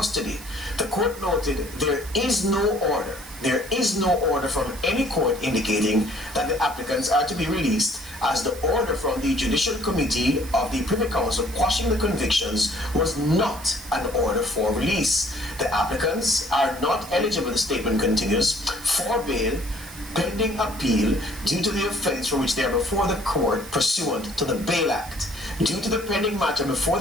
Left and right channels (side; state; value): right; noise; hiss, 16 dB below the sound